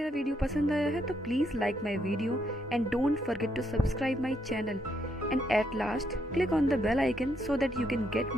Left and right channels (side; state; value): both; normal; correlation 0.76